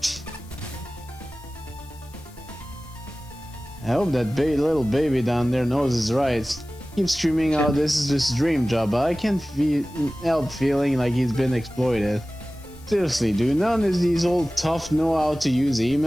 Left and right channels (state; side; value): noise; left; hiss, 25 dB below the sound